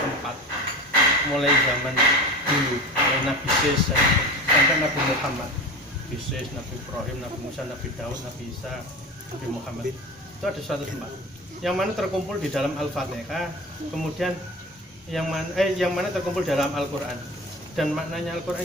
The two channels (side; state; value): both; normal; correlation 0.31